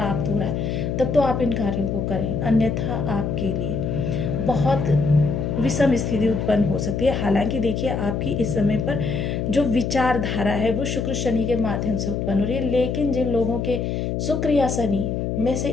हो रहा है, तब तो आप इन कार्यों को करें, अन्यथा आपके लिए बहुत विषम स्थिति उत्पन्न हो सकती है। हालांकि देखिए आपकी इस समय पर जो विचारधारा है वो शुक्र शनि के माध्यम से उत्पन्न हो रही है, लेकिन जिन लोगों के शुक्र या शनि में से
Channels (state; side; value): noise; left; hum, 1 dB below the sound